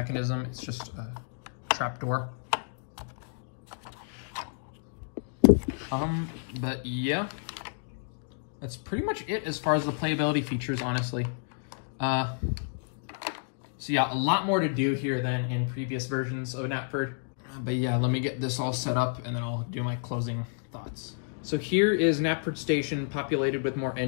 It's just a trap door. But yeah, that's pretty much it as far as the playability features, honestly. So yeah, a lot more to do here than in previous versions of Knapford. But yeah, let me get this all set up and then I'll do my closing thoughts. So here is Knapford Station populated with more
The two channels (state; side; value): silent; right; digital silence